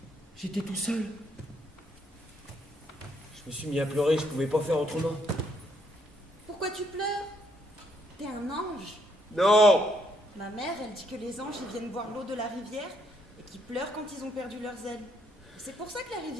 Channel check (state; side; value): normal; both; correlation 0.72